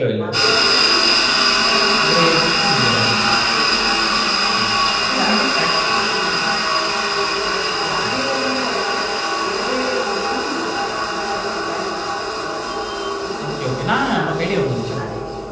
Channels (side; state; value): both; identical; correlation 1.00